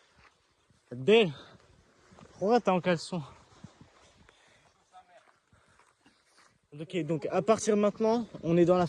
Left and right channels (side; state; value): both; identical; correlation 1.00